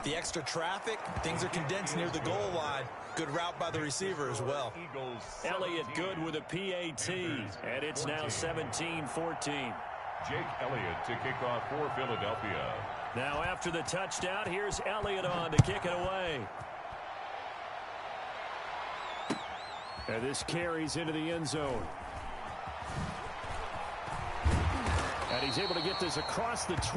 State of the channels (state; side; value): identical; both; correlation 1.00